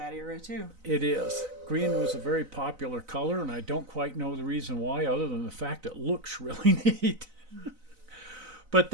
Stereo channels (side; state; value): left; late; 4.0 ms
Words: era, too. It is. Green was a very popular color, and I don't quite know the reason why, other than the fact it looks really neat. But